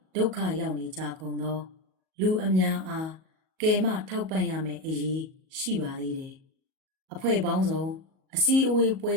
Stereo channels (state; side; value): late; left; 37 ms